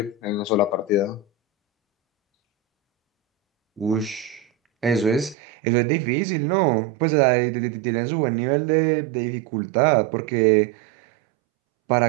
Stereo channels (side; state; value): left; drops out; at 5.4 s